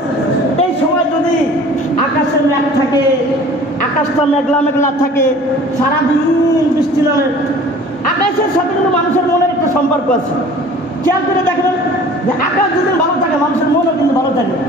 এই সময় যদি আকাশে মেঘ থাকে, আকাশটা মেঘলা মেঘলা থাকে, সারাদিন বৃষ্টি নামে, আকাশের সাথে কিন্তু মানুষের মনের একটা সম্পর্ক আছে। খেয়াল করে দেখবেন যে আকাশ যদি ভালো থাকে মানুষের মনও কিন্তু ভালো থাকে,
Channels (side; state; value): both; normal; correlation 0.46